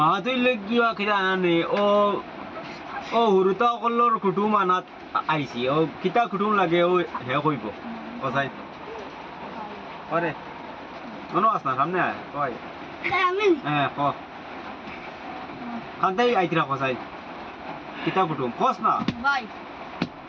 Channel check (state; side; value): identical; both; correlation 1.00